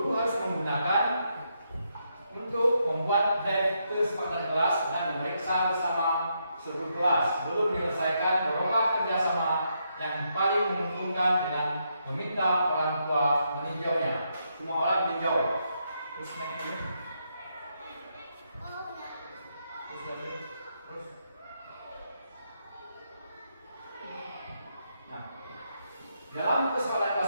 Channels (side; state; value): both; inverted; correlation -0.79